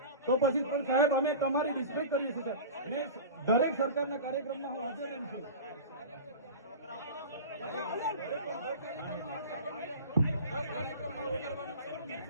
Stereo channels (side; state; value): both; inverted; correlation -0.32